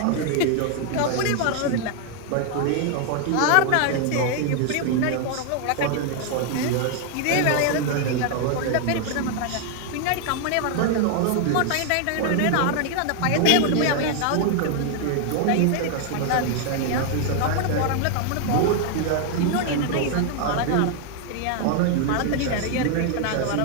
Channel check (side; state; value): both; different; correlation 0.00